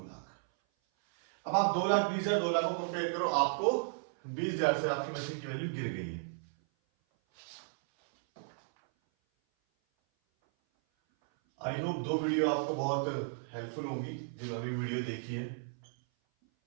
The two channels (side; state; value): left; silent; 55 dB below the other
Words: लाख। अब आप 2,20,000 2 लाख को कंपेयर करो, आपको 20,000 से आपकी मशीन की वैल्यू गिर गई है। आई होप 2 वीडियो आपको बहुत हेल्पफुल होंगी जिन्होंने वीडियो देखी है।